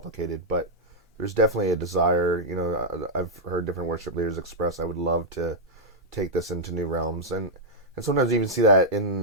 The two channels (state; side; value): normal; both; correlation -0.06